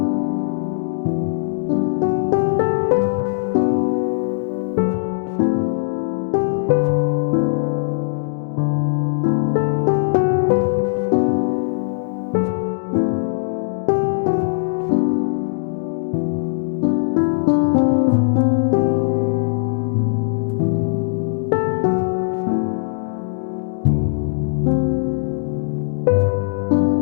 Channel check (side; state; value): right; silent; digital silence